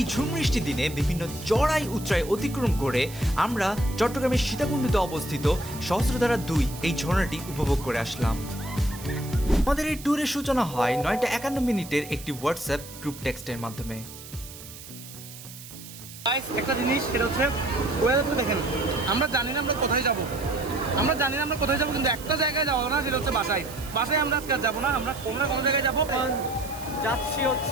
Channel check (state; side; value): noise; right; hiss, 15 dB below the sound